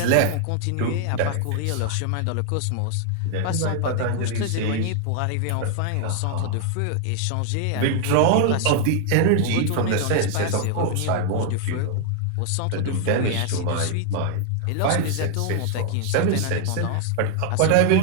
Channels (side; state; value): both; different; correlation 0.00